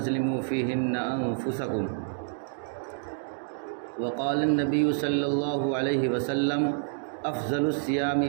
فيهن انفسكم وقال النبي صلى الله عليه وسلم افضل الصیام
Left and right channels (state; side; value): silent; left; digital silence